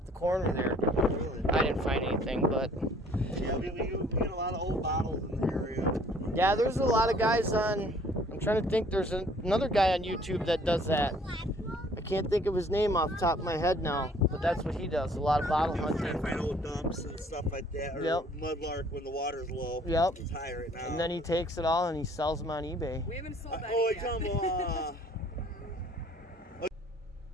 the corner there. Really? I didn't find anything, but. Yeah, we get a lot of old bottles in the area. Yeah, there's a lot of guys on. I'm trying to think. There's another guy on YouTube that does that. I can't think of his name off the top of my head now, but that's what he does. A lot of bottle hunting. Trying to find old dumps and stuff like that, or mudlark when the water's low. Yep. It's high right now. And then he takes it all and he sells them on eBay. We haven't sold that yet.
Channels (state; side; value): normal; both; correlation 0.57